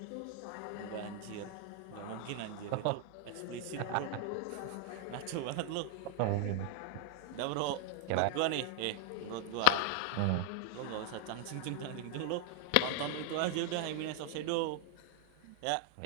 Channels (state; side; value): different; both; correlation 0.00